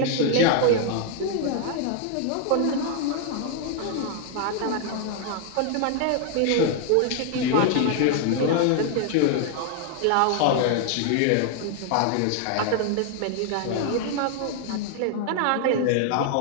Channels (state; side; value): different; both; correlation 0.00